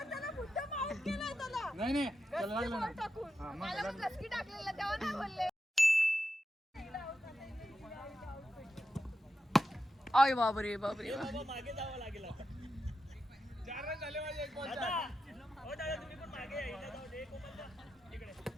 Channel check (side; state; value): both; normal; correlation 0.89